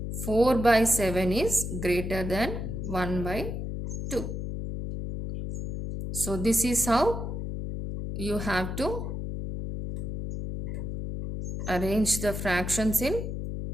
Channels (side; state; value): left; noise; hum, 4 dB below the sound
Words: 4 by 7 is greater than 1 by 2. So this is how you have to arrange the fractions in